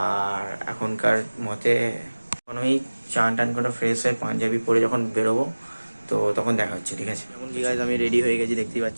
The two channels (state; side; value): inverted; both; correlation -1.00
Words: আর এখনকার মতে এখন আমি চান টান করে ফ্রেশ হয়ে পাঞ্জাবি পরে যখন বেরোবো তো তখন দেখা হচ্ছে, ঠিক আছে। এখন ঠিক আছে, আমি রেডি হয়ে গেছি দেখতেই